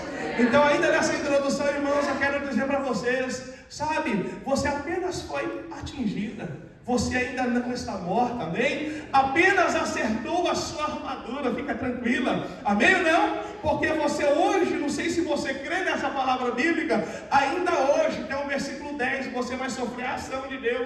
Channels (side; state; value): both; identical; correlation 1.00